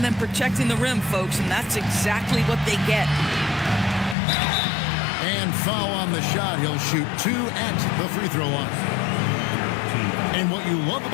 than protecting the rim, folks, and that's exactly what they get. And foul on the shot. He'll shoot 2 at the free throw line. And what you love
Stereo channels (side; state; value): right; drops out; at 4.2 s